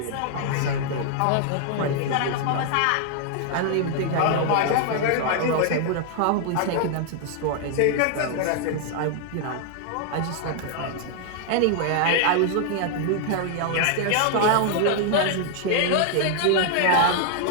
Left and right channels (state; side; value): different; both; correlation 0.00